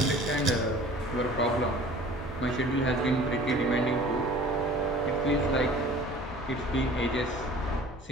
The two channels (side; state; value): both; normal; correlation 0.46